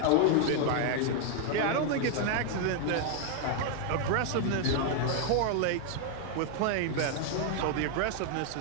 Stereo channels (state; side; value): different; both; correlation 0.00